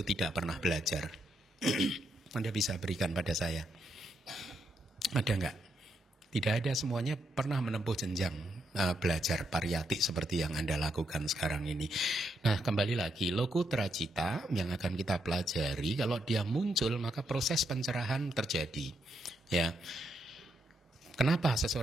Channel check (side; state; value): both; normal; correlation 0.79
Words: tidak pernah belajar. Anda bisa berikan pada saya. Ada enggak? Tidak ada, semuanya pernah menempuh jenjang belajar pariyati seperti yang Anda lakukan sekarang ini. Nah, kembali lagi, lokutra cita yang akan kita pelajari, kalau dia muncul maka proses pencerahan terjadi. Ya. Kenapa